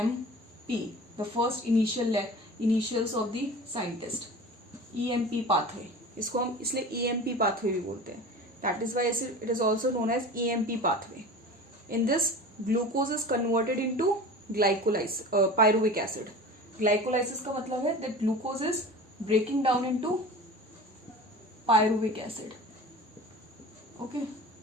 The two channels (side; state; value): both; normal; correlation 0.36